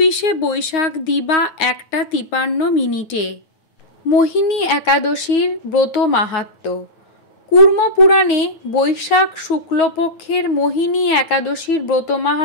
বৈশাখ দিবা 1টা 53 মিনিটে। মোহিনী একাদশীর ব্রত মাহাত্ম্য। কুর্ম পুরাণে বৈশাখ শুক্লপক্ষের মোহিনী একাদশীর ব্রত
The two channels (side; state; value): right; late; 9.2 ms